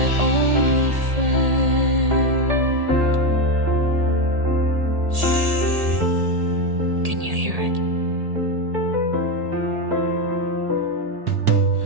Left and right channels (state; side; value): late; left; 1.8 ms